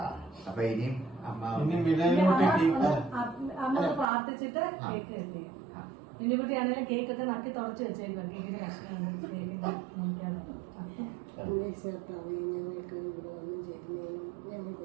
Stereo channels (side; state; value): left; drops out; at 4.0 s